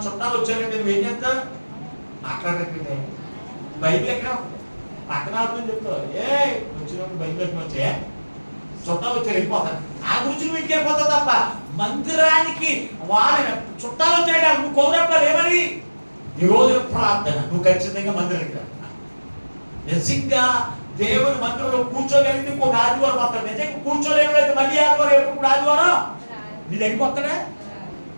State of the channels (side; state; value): both; inverted; correlation -1.00